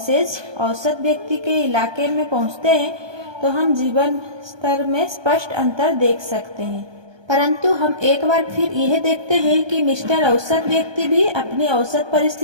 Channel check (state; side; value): late; left; 1.2 ms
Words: औसत व्यक्ति के इलाके में पहुँचते हैं तो हम जीवन स्तर में स्पष्ट अंतर देख सकते हैं। परंतु हम एक बार फिर यह देखते हैं कि मिस्टर औसत व्यक्ति भी अपनी औसत